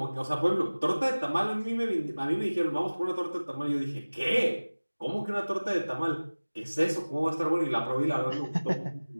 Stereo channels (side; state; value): both; inverted; correlation -1.00